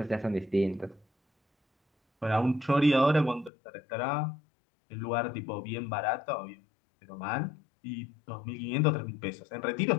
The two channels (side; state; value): right; drops out; at 3.5 s